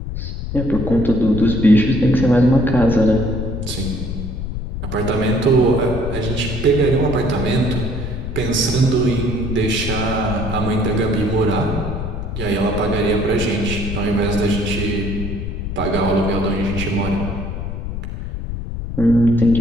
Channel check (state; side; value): noise; left; rumble, 5 dB below the sound